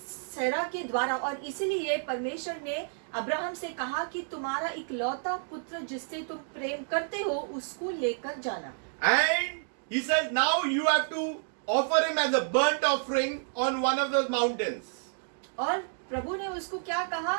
के द्वारा, और इसीलिए परमेश्वर ने अब्राहम से कहा कि तुम्हारा इकलौता पुत्र जिससे तुम प्रेम करते हो उसको लेकर जाना। And he says, now you have to offer him as a burnt offering on one of those mountains. और प्रभु ने उसको क्या कहा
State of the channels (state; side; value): silent; left; digital silence